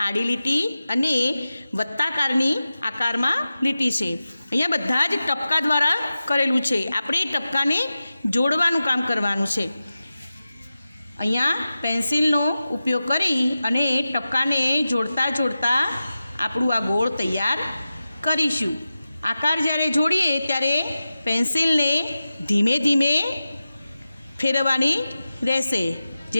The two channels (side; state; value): both; inverted; correlation -0.94